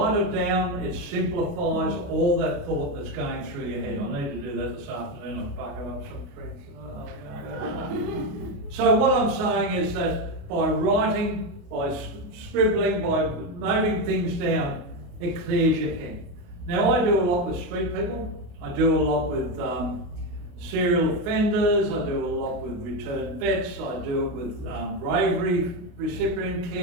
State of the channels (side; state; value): left; late; 28 ms